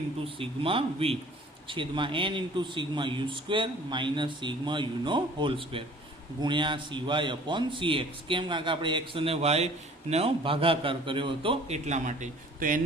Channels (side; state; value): both; normal; correlation 0.50